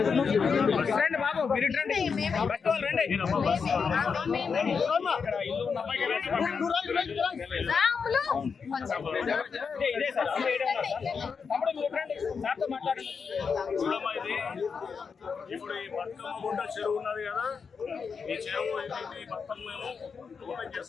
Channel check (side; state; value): right; quieter; 5.7 dB